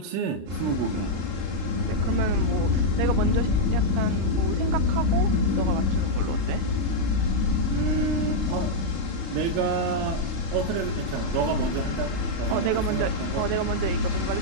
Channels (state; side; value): late; left; 36 ms